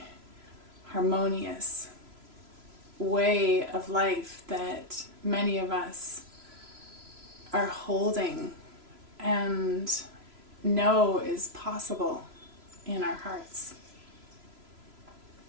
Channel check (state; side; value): late; left; 3.0 ms